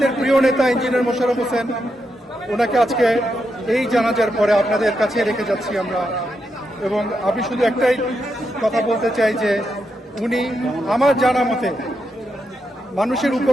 প্রিয় নেতা ইঞ্জিনিয়ার মোশাররফ হোসেন ওনাকে আজকে এই জানাজার পরে আপনাদের কাছে রেখে যাচ্ছি আমরা। এবং আমি শুধু একটাই কথা বলতে চাই যে উনি আমার জানা মতে মানুষের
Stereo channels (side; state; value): both; normal; correlation 0.83